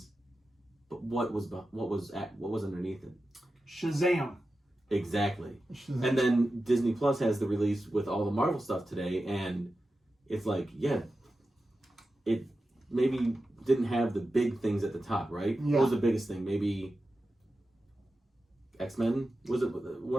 But what was underneath it? Shazam. Exactly. And then Disney Plus has the release with all the Marvel stuff today, and it's like, it maybe didn't have the big things at the top, right? Yeah. What was the biggest thing? Maybe X-Men? Was it one of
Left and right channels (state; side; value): normal; both; correlation 0.92